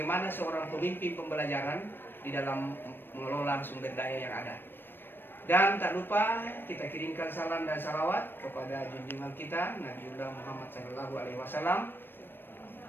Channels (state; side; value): late; right; 0.097 ms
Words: seorang pemimpin pembelajaran di dalam mengelola sumber daya yang ada. Dan tak lupa kita kirimkan salam dan salawat kepada junjungan kita Nabiullah Muhammad SAW,